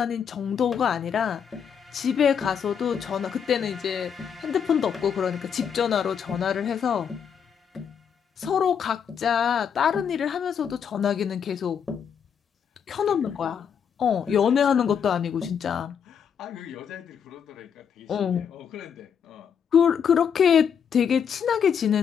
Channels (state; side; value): quieter; right; 7.5 dB